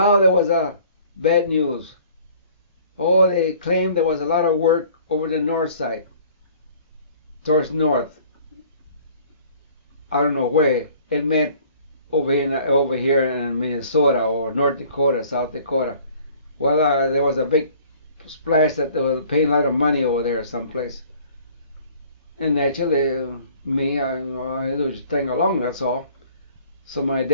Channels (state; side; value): inverted; both; correlation -0.53